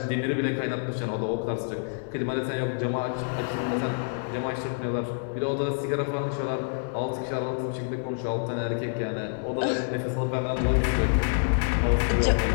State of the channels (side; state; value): right; silent; digital silence